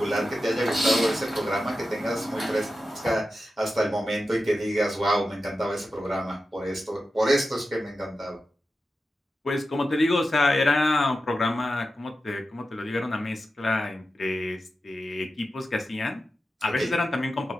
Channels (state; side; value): normal; both; correlation 0.92